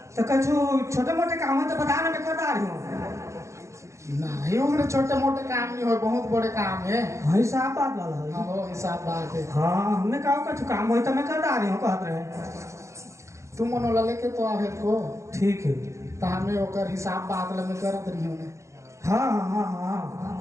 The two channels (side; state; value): left; late; 0.14 ms